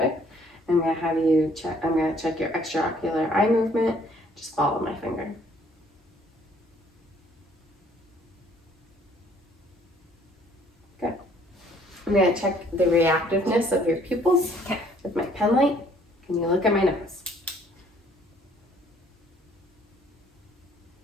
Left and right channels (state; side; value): normal; both; correlation 0.61